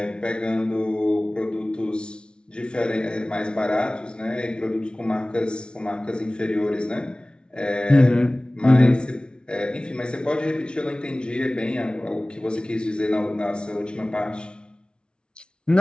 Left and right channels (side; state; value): right; late; 0.056 ms